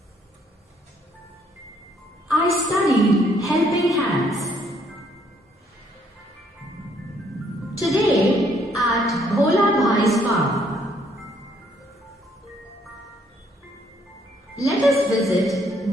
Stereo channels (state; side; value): normal; both; correlation 0.67